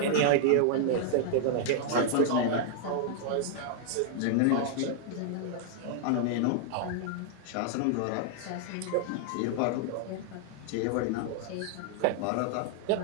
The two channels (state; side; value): different; both; correlation 0.00